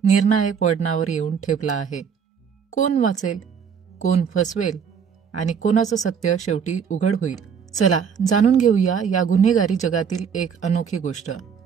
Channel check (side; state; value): left; quieter; 6.9 dB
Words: निर्णायक वळणावर येऊन ठेपला आहे. कोण वाचेल, कोण फसवेल आणि कोणाचं सत्य शेवटी उघड होईल? चला जाणून घेऊया या गुन्हेगारी जगातील एक अनोखी गोष्ट.